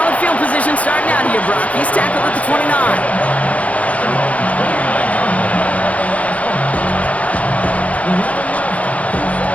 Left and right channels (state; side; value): late; right; 0.067 ms